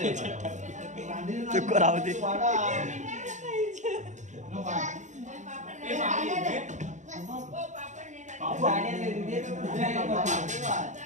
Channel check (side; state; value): left; late; 0.35 ms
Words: चुक राहू दे.